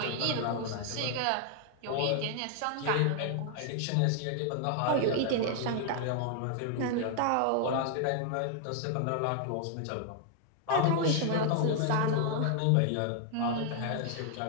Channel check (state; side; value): different; both; correlation 0.00